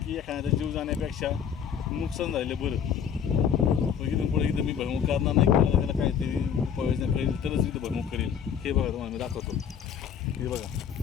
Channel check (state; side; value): quieter; right; 8.1 dB